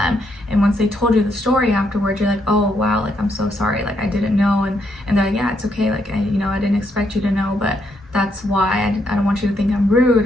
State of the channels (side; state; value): both; normal; correlation 0.76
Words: And once they told you the story afterwards, you're like, oh wow, like I'm so sorry, like I didn't know. And they're like, yeah, it's okay, like I didn't expect you to know, but that's why I don't want you to think I'm rude